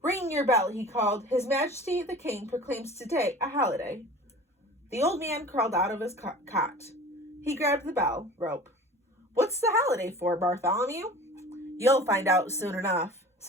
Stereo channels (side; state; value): both; normal; correlation 0.41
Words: "Ring your bell," he called. "His Majesty the King proclaims today a holiday." The old man crawled out of his cot. He grabbed the bell rope. "What's the holiday for, Bartholomew?" "You'll find out soon enough,"